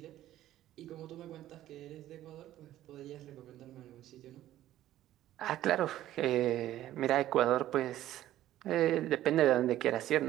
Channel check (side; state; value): left; quieter; 13.5 dB